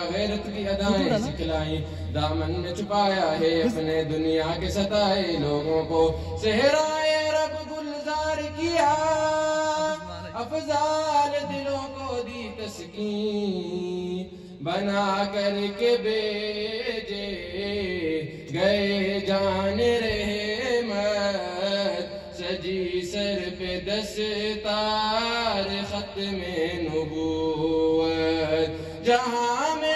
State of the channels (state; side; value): identical; both; correlation 1.00